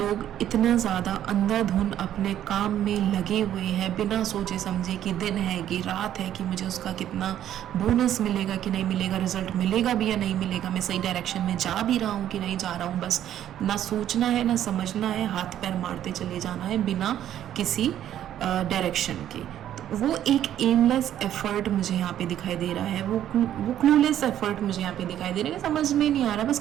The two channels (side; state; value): left; quieter; 11.2 dB